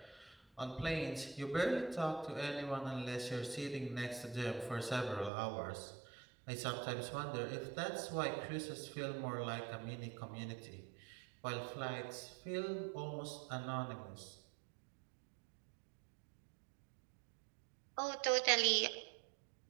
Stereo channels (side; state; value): left; drops out; at 5.3 s